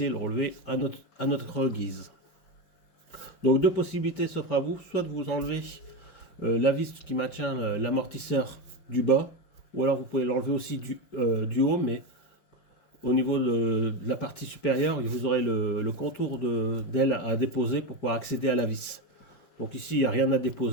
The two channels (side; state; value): right; late; 5.0 ms